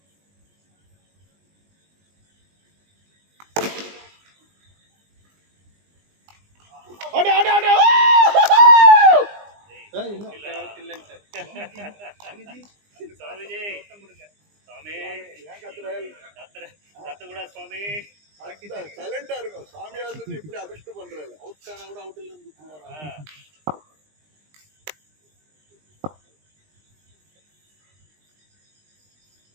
சைலண்டா இருக்கும் சாமியா இருந்துட்டு இப்படி அபிஷ்டு பண்றாரு அவுட் ஆனா கூட அவுட்ல இருந்து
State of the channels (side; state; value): left; late; 20 ms